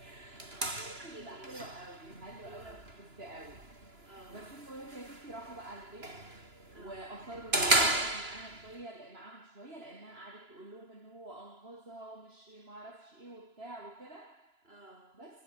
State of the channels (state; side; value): late; left; 2.9 ms